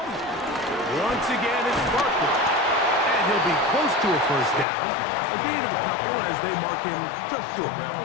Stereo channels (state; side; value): drops out; right; at 4.7 s